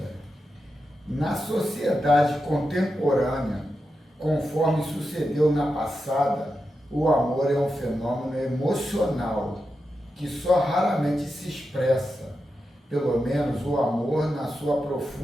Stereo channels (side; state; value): both; normal; correlation 0.89